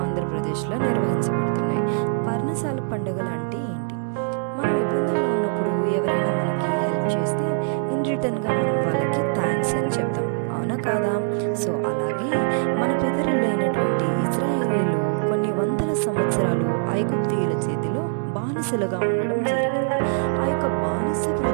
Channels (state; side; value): silent; left; digital silence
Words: ఆంధ్రప్రదేశ్లో నిర్వహించబడుతున్నాయి. పర్ణశాల పండుగలు అంటే ఏంటి? మనం ఇబ్బందుల్లో ఉన్నప్పుడు ఎవరైనా మనకి హెల్ప్ చేస్తే ఇన్ రిటర్న్గా మనం వాళ్ళకి థ్యాంక్స్ అని చెప్తాం, అవునా కాదా? సో అలాగే మన పితరులైనటువంటి ఇజ్రాయేలీలు కొన్ని వందల సంవత్సరాలు ఐగుప్తీయుల చేతిలో బానిసలుగా ఉండడం జరిగింది. ఆ యొక్క బానిస